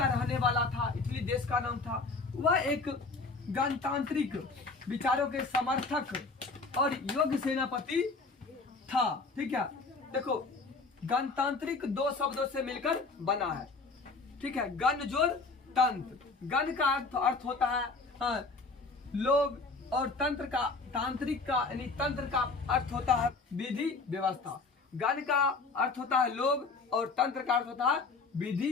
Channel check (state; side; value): quieter; right; 4.0 dB